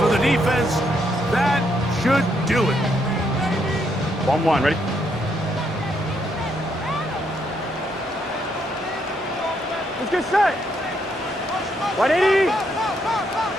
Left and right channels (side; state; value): both; normal; correlation 0.75